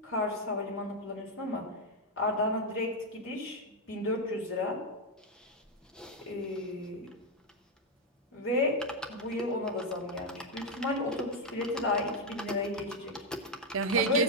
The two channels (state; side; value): normal; both; correlation 0.03